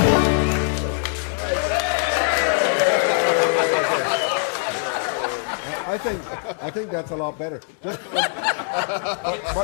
I think that's a lot better. That's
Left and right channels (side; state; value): right; silent; 64 dB below the other